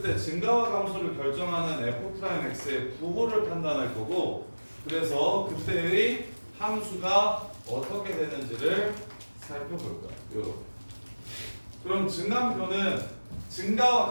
때 증가와 감소를 결정하는 f'x의 부호를 판단할 거고, 그래서 그때의 함수가 어떻게 되는지를 살펴볼 거야. 요렇게. 그럼 증감표는 증가와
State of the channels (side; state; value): both; inverted; correlation -1.00